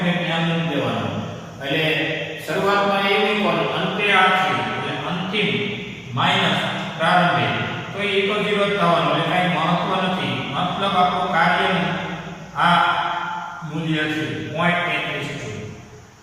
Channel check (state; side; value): identical; both; correlation 1.00